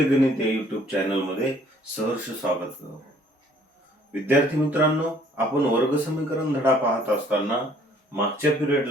गणित या युट्यूब चॅनल मध्ये सहर्ष स्वागत करतो. विद्यार्थी मित्रांनो, आपण वर्ग समीकरण धडा पाहत असताना मागच्या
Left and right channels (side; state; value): both; normal; correlation 0.59